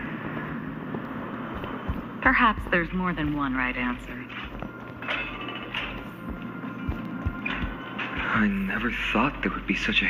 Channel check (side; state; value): both; identical; correlation 1.00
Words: Perhaps there's more than one right answer. I never thought there would be such a